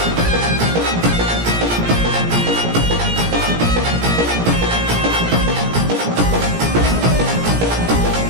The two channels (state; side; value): late; left; 17 ms